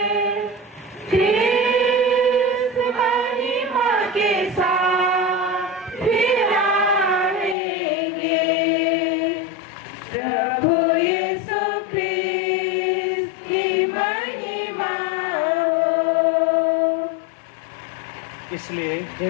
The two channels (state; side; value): drops out; right; at 7.6 s